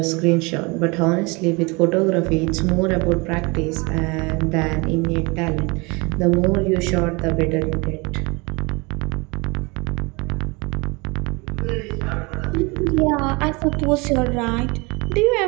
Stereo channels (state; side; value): quieter; left; 27.3 dB